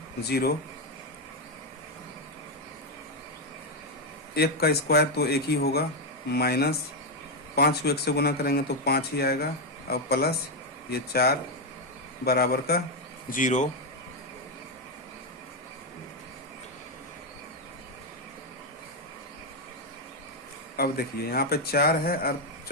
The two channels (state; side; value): normal; both; correlation 0.05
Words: 0। 1 का स्क्वायर तो 1 ही होगा, -5 को 1 से गुना करेंगे तो 5 ही आएगा और प्लस ये 4 बराबर का 0। अब देखिए यहाँ पे 4 है और